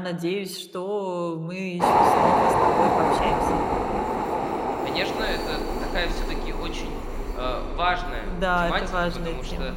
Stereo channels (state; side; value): identical; both; correlation 1.00